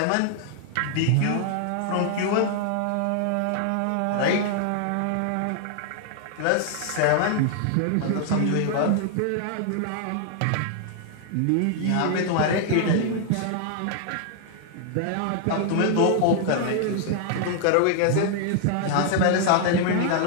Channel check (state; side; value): different; both; correlation 0.00